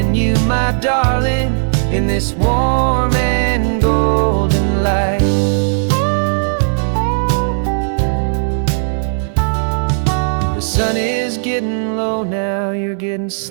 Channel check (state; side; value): silent; left; digital silence